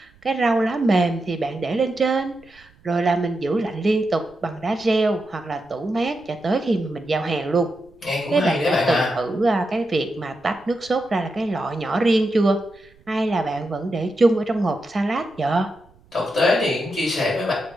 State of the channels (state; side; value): noise; right; rumble, 29 dB below the sound